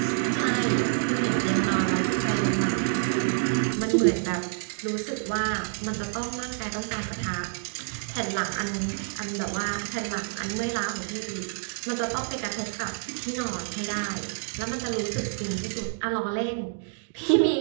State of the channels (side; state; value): left; silent; digital silence